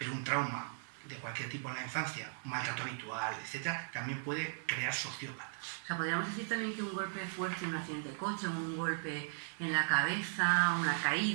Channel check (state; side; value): silent; left; digital silence